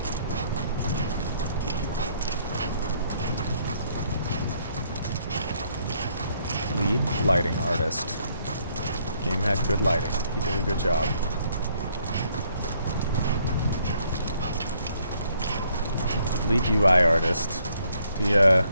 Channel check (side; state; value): both; inverted; correlation -0.68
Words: Lead lighting artist. Game had good lighting. He did a good job. Lead UI artist. The